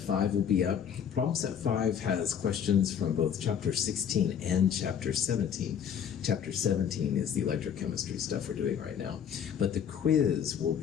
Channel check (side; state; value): right; quieter; 8.3 dB